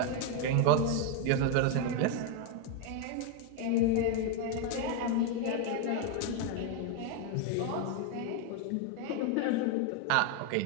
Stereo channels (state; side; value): different; both; correlation 0.01